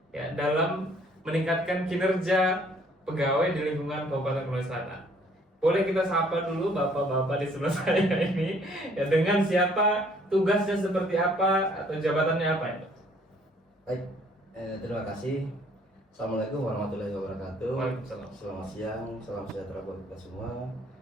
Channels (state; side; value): normal; both; correlation 0.61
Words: ya dalam meningkatkan kinerja pegawai di lingkungan Kabupaten Konawe Selatan. Boleh kita sapa dulu bapak-bapak di sebelah saya ini ya, dengan siapa, tugasnya seperti apa, atau jabatannya apa ya? Baik, terima kasih. Assalamualaikum warahmatullahi wabarakatuh. Waalaikumsalam. Selamat siang, salam sejahtera buat kita semua.